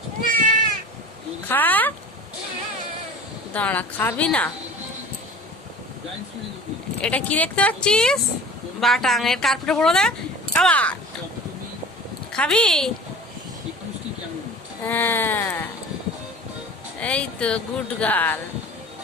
খা, দাঁড়া, খাবি না? এটা কি দেখতে পাচ্ছিস? বাটাং এর কার্পেটে পড়ো দে। আবার খাবি? হ্যাঁ, এই তো গুড গার্ল।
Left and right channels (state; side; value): normal; both; correlation 0.39